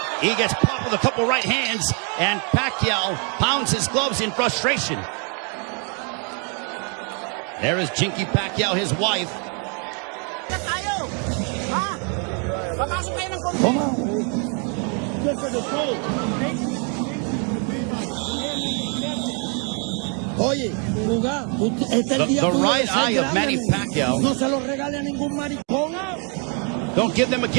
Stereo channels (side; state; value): left; quieter; 38.8 dB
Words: He gets popped with a couple right hands, and Pacquiao pounds his gloves in frustration. There is Jinky Pacquiao, his wife. The right eye of Manny Pacquiao. Don't give them a